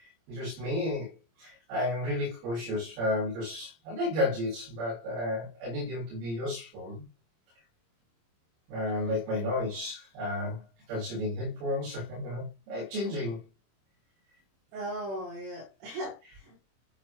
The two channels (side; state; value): left; late; 26 ms